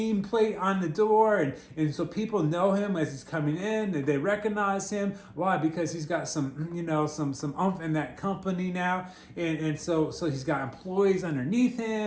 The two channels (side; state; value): both; identical; correlation 1.00